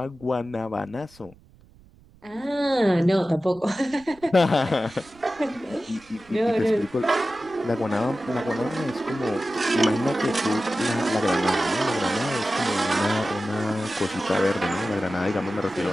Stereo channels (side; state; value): right; noise; rumble, 27 dB below the sound